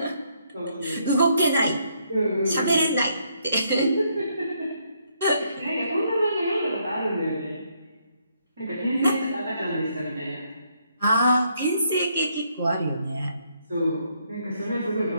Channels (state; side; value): inverted; both; correlation -0.73